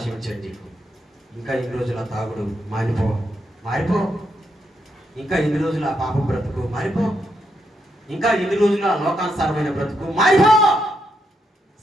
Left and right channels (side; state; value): both; normal; correlation 0.80